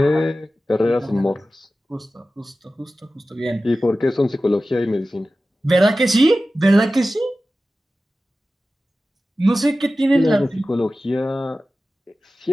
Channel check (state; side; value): normal; both; correlation 0.95